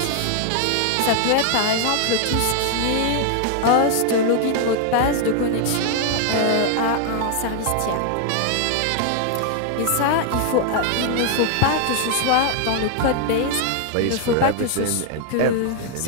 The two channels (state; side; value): different; both; correlation 0.00